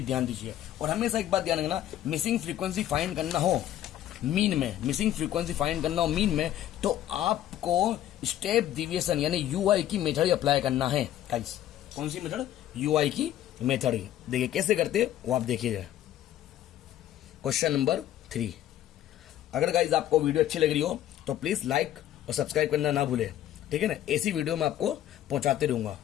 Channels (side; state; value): right; quieter; 12.4 dB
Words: ध्यान दीजिए। और हमेशा एक बात ध्यान रखना, मिसिंग फ्रीक्वेंसी फाइंड करना हो मीन में, मिसिंग फ्रीक्वेंसी फाइंड करना हो मीन में, तो आपको स्टेप डिविएशन यानी यूआई की मेथड अप्लाई करना है गाइस। कौन सी मेथड? यूआई की मेथड। देखिए कैसे करते हैं वो आप देखिएगा। Question number 3। अगर गाइस आपको वीडियो अच्छी लग रही हो तो प्लीज लाइक और सब्सक्राइब करना ना भूले। ठीक है ना, ऐसी वीडियो मैं आपको पहुंचाते रहूंगा।